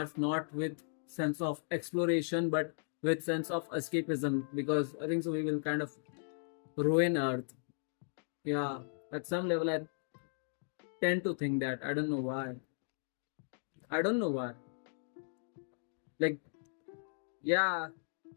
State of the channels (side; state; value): right; silent; digital silence